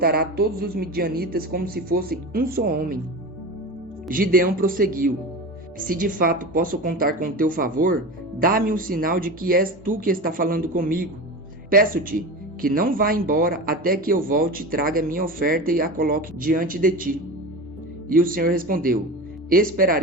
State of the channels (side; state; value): both; normal; correlation 0.28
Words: todos os midianitas como se fossem um só homem. Gideão prosseguiu: Se de fato posso contar com teu favor, dá-me um sinal de que és tu que está falando comigo. Peço-te que não vá embora até que eu volte e traga minha oferta e a coloque diante de ti. E o Senhor respondeu: